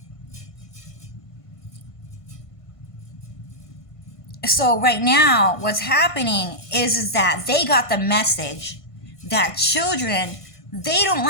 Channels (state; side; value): late; right; 1.5 ms